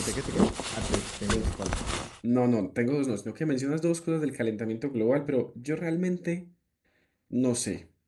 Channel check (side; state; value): both; identical; correlation 1.00